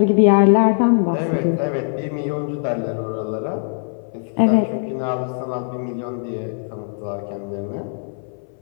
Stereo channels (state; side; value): silent; right; 59 dB below the other